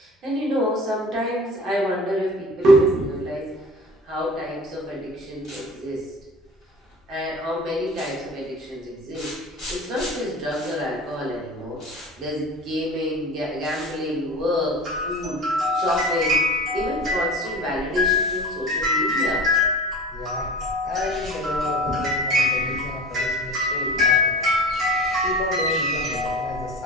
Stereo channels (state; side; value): normal; both; correlation 0.37